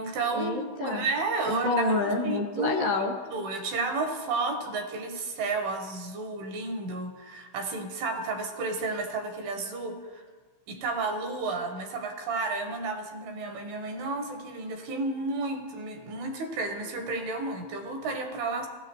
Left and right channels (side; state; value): left; late; 15 ms